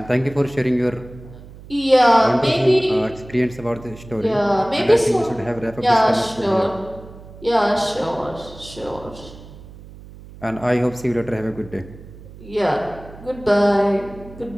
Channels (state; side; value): noise; right; hum, 18 dB below the sound